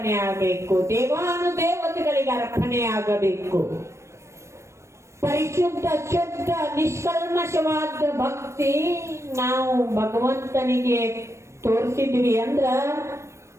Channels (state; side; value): late; left; 0.13 ms